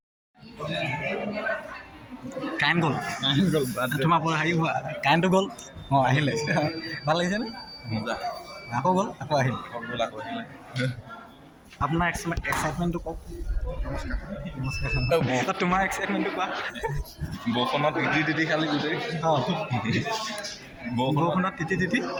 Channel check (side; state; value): both; identical; correlation 1.00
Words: কাৰেণ্ট গ'ল, তোমাৰ পৰা হেৰি হোৱা কাৰেণ্টটো গ'ল। আহিলে ভাল লাগিছেনে? আকৌ গ'ল, আকৌ আহিল। আপোনাৰ এক্সাইটমেণ্টটো কওক। নমস্কাৰ। তোমাৰ এক্সাইটমেণ্টটো কোৱা। বৰষুণত তিতি খালি গোটেই বৰষুণত তিতি